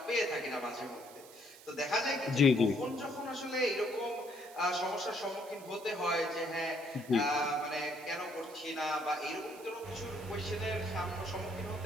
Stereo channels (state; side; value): noise; right; hiss, 20 dB below the sound